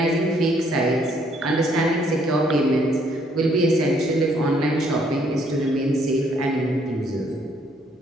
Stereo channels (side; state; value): both; normal; correlation 0.67